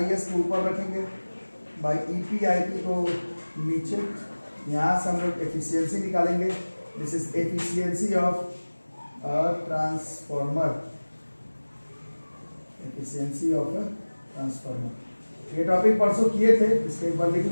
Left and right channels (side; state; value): both; inverted; correlation -1.00